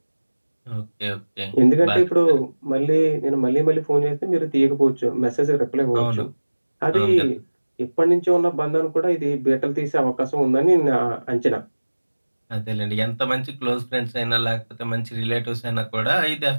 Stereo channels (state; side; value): inverted; both; correlation -1.00